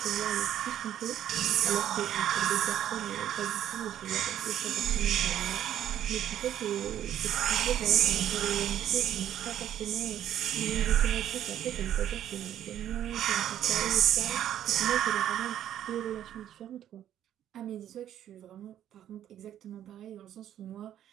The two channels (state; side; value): quieter; left; 11.0 dB